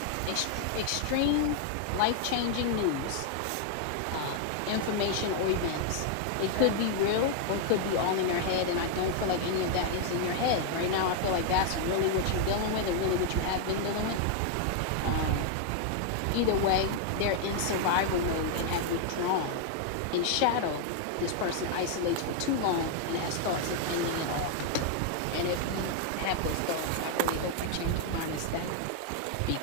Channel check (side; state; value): both; different; correlation 0.00